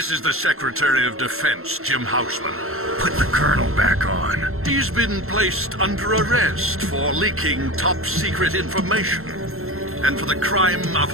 is the Secretary of Defense, Jim Houseman. Put the Colonel back on. He's been placed under arrest for leaking top-secret information and for the crime of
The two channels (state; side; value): late; left; 0.62 ms